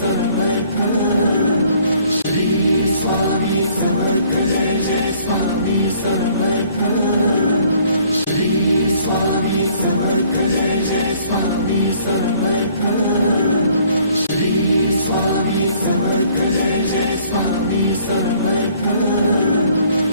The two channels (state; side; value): inverted; both; correlation -0.60